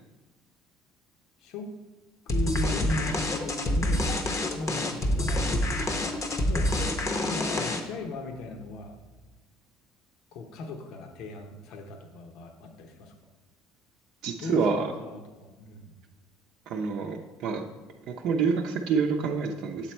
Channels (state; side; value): normal; both; correlation 0.61